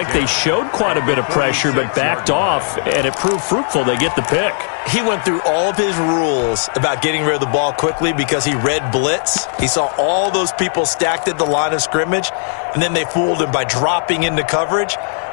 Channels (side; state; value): right; silent; digital silence